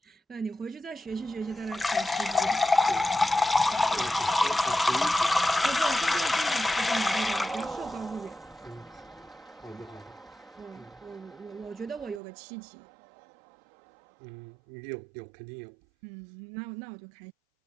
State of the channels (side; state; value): left; drops out; at 12.2 s